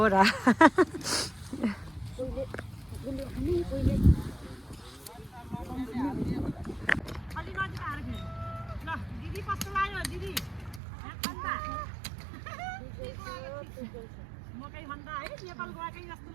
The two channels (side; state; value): left; drops out; at 10.8 s